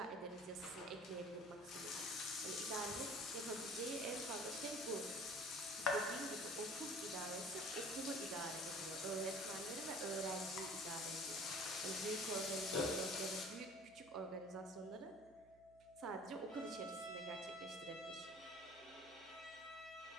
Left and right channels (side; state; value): right; noise; hum, 26 dB below the sound